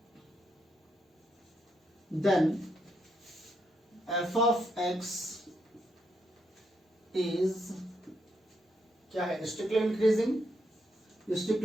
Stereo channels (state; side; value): normal; both; correlation 0.79